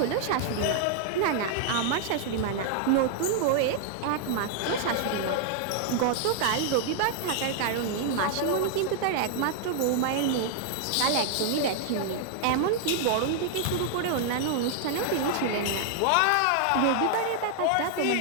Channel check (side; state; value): both; different; correlation -0.01